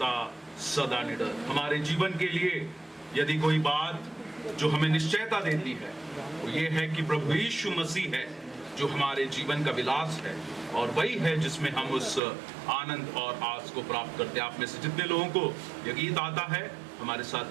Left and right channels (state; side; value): drops out; left; at 12.2 s